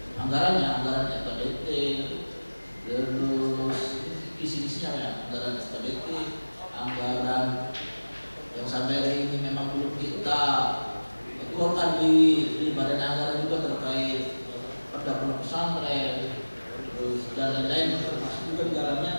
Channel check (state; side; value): inverted; both; correlation -1.00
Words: anggaran SKBT, terus isi-isinya ya, anggaran SKBT, anggaran yang sampai hari ini memang belum kita keluarkan di badan anggaran juga terkait pada pondok pesantren, terus dan lain-lain, termasuk juga di